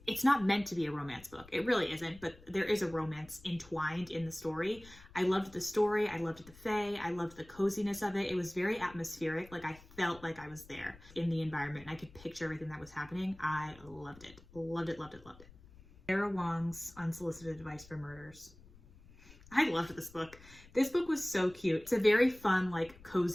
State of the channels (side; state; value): left; noise; rumble, 22 dB below the sound